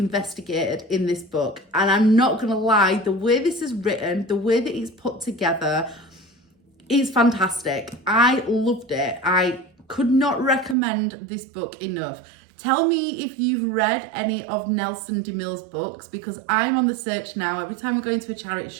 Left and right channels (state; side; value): drops out; left; at 10.8 s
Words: in this book. And I'm not going to lie, the way this is written, the way that it's put together, it's fantastic. I loved it. I could not recommend this book enough. Tell me if you've read any of Nelson Demille's books because I'm on the search now every time I go into a charity